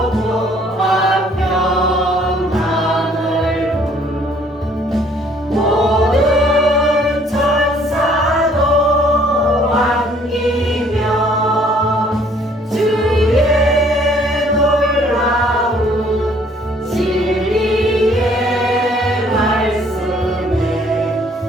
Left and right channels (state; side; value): normal; both; correlation 0.60